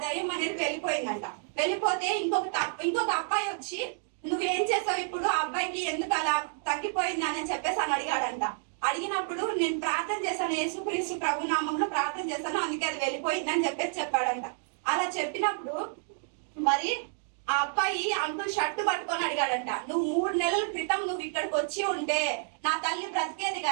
దయ్యం అనేది వెళ్ళిపోయిందంట. వెళ్ళిపోతే ఇంకొక అబ్బాయి వచ్చి నువ్వేం చేసావు ఇప్పుడు, ఆ అబ్బాయికి ఎందుకు అలా తగ్గిపోయింది అని చెప్పేసి అని అడిగాడంట. అడిగినప్పుడు నేను ప్రార్థన చేశాను, యేసుక్రీస్తు ప్రభు నామంలో ప్రార్థన చేశాను, అందుకే అది వెళ్ళిపోయింది అని చెప్పేసి చెప్పాడంట. అలా చెప్పినప్పుడు మరి ఆ అబ్బాయి అంకుల్ షర్టు పట్టుకొని అడిగాడంట, నువ్వు 3 నెలల క్రితం నువ్వు ఇక్కడికి వచ్చి ఉంటే నా తల్లి బ్రతికేది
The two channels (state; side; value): silent; left; digital silence